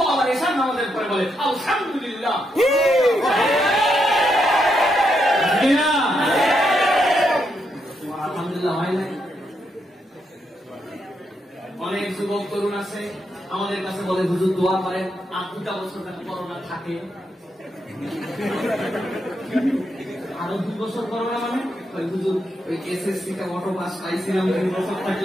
আবার এশার নামাজের পরে বলে আলহামদুলিল্লাহ। আলহামদুলিল্লাহ হয় নাই? অনেক যুবক তরুণ আছে আমাদের কাছে বলে হুজুর দোয়া করেন, 2টা বছর করোনা থাকে, আরো 2 বছর করোনা, মানে হুজুর ওই এসএসসি টা অটো পাস পাইছিলাম, 2 বছর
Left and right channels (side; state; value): both; normal; correlation 0.80